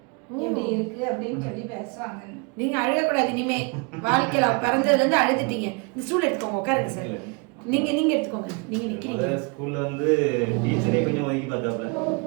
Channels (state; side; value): quieter; left; 31.2 dB